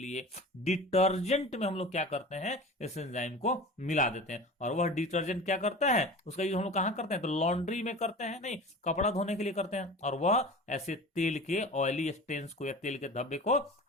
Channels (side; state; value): both; normal; correlation 0.36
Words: डिटर्जेंट में हम लोग क्या करते हैं, इस एंजाइम को मिला देते हैं। और वह डिटर्जेंट क्या करता है, उसका यूज हम लोग कहां करते हैं? तो लॉन्ड्री में करते हैं, नहीं, कपड़ा धोने के लिए करते हैं। और वह ऐसे तेल के ऑयली स्टेन्स को या तेल के धब्बे को